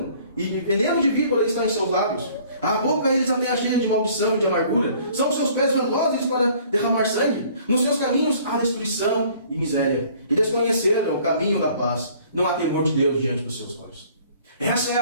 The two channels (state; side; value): inverted; both; correlation -0.55